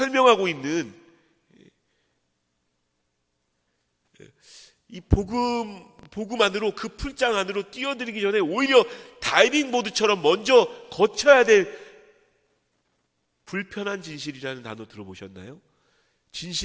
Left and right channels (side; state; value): both; identical; correlation 1.00